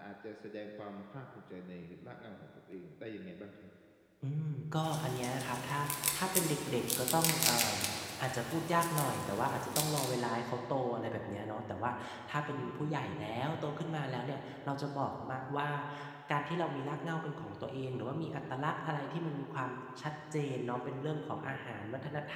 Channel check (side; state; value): both; identical; correlation 1.00